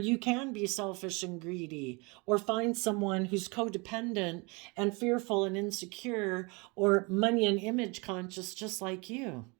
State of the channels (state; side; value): quieter; left; 28.7 dB